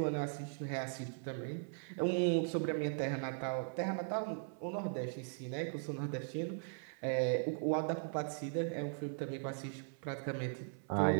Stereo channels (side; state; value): left; silent; 52 dB below the other